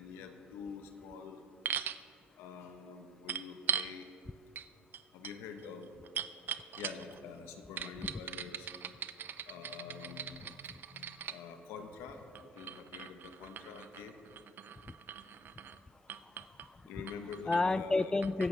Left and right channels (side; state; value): both; normal; correlation 0.50